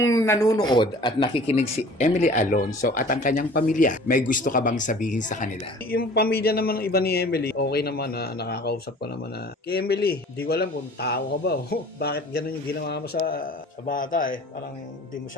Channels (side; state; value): both; normal; correlation 0.47